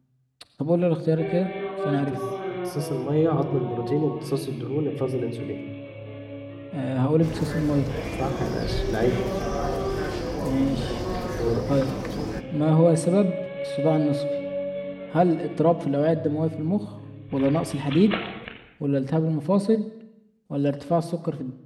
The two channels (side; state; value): both; identical; correlation 1.00